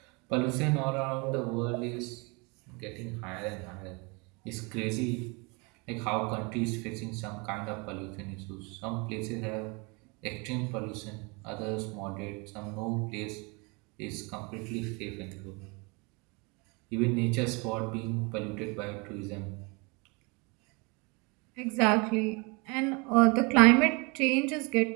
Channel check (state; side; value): quieter; left; 29.6 dB